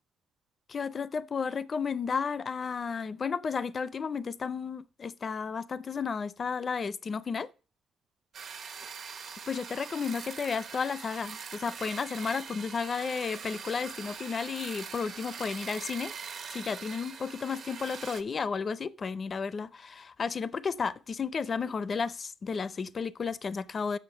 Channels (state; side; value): quieter; right; 4.6 dB